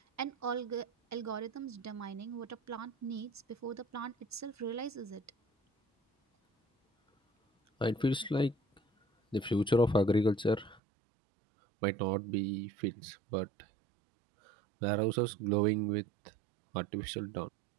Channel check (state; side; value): drops out; left; at 10.8 s